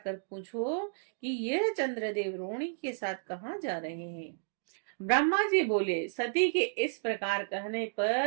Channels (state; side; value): silent; left; digital silence